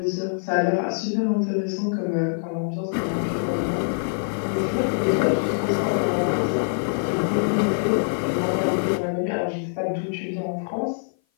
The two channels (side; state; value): right; silent; 56 dB below the other